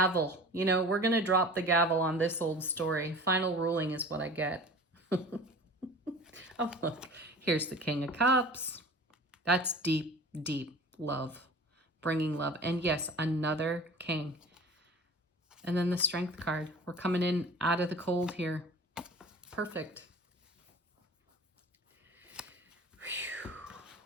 You know, we're going to drop the gavel on this old story. Final ruling is what I get. Oh, look. Here's the King of Cups. That's deep, deep love. Bringing love. And yes, another king. And then the Strength card. We're coming in out of the cold here. Perfect. Whew.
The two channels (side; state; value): both; normal; correlation 0.40